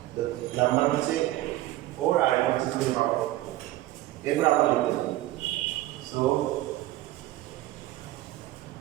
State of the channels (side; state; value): left; quieter; 16.1 dB